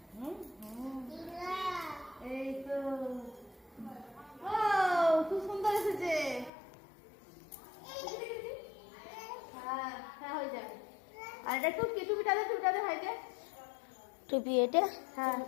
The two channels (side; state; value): right; drops out; at 6.5 s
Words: এই তো খুব সুন্দর এসেছে। হ্যাঁ হ্যাঁ হয়ে যাবে। আর এটা টুপিটা দে ভাইকে। টুপি এটা? হ্যাঁ